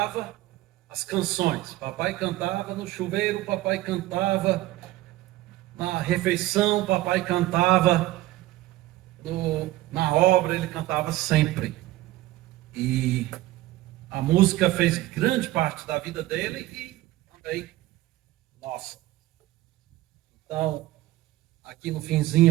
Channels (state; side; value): quieter; left; 16.6 dB